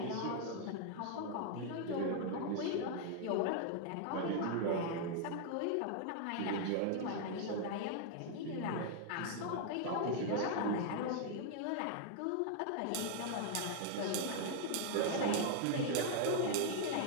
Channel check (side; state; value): both; different; correlation 0.00